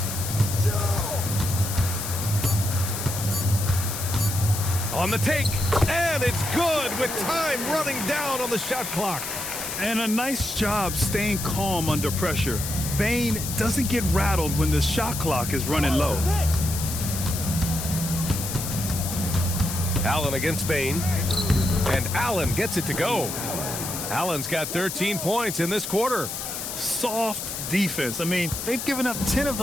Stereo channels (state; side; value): noise; left; hiss, 5 dB below the sound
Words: On the take, and it's good with time running down on the shot clock. And a nice job staying calm under pressure. Bain doesn't get rattled when the shot clock is running low. Allen against Bain, and Allen gets it to go. Allen's got 13 points in this quarter. Soft defense. I mean, they've given up 10 of